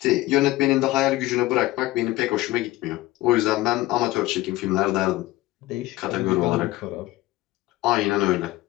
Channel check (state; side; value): quieter; right; 17.8 dB